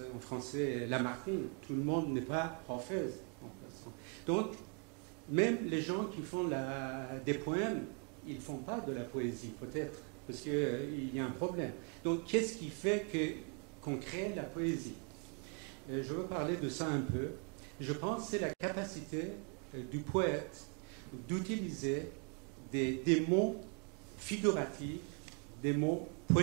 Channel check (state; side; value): quieter; left; 39.3 dB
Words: en français, Lamartine, tout le monde n'est pas Orphèse. Donc, même les gens qui font des poèmes, ils ne font pas de la poésie, peut-être, parce qu'il y a un problème. Donc, qu'est-ce qui fait qu'on crée la poésie? Je veux parler de ça un peu. Je pense que c'est la capacité du poète d'utiliser des mots figuratifs, des mots